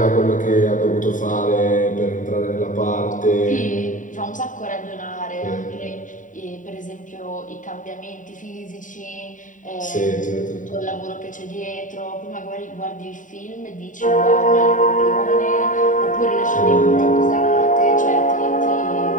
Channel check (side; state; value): right; late; 0.38 ms